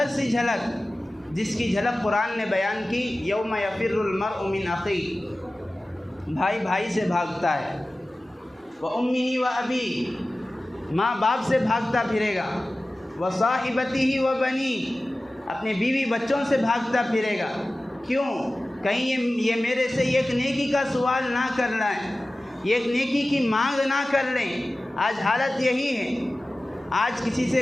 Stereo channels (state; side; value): normal; both; correlation 0.96